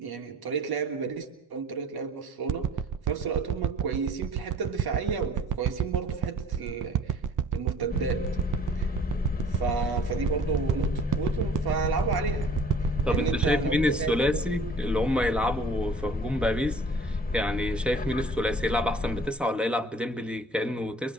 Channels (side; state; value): both; normal; correlation 0.50